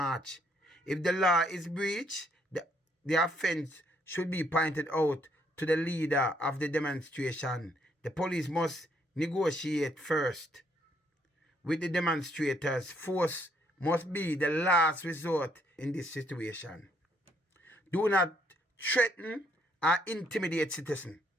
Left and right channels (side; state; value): both; normal; correlation 0.70